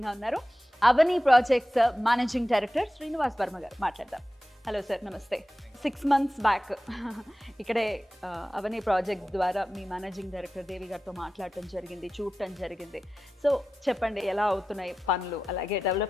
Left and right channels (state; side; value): normal; both; correlation 0.94